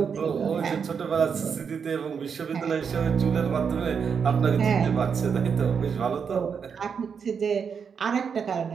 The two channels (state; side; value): quieter; left; 6.5 dB